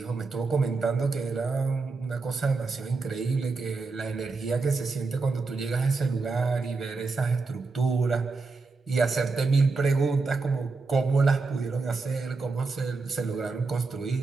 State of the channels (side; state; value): left; quieter; 4.1 dB